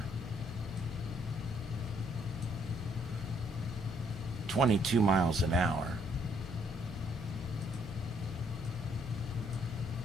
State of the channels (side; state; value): both; normal; correlation 0.68